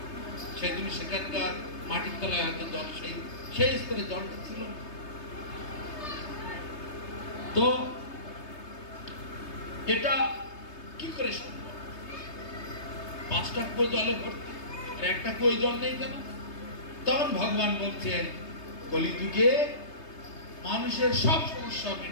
সেই জন্য সেখানকার মাটির তলায় হয়তো জল সেই স্তরে জলটা ছিল। তো এটা কি করে সম্ভব? 5টা কুয়ো জলে ভর্তি, আর একটা কুয়ো জল নেই কেন? তখন ভগবান বলছেন, কলিযুগে মানুষের সব সমস্যা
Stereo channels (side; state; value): right; late; 3.3 ms